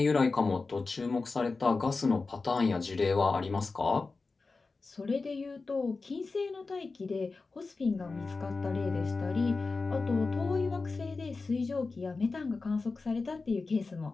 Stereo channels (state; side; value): quieter; right; 4.0 dB